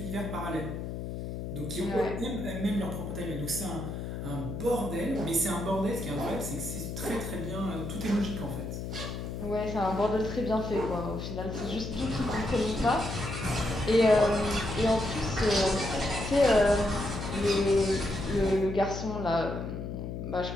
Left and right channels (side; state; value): left; noise; hum, 6 dB below the sound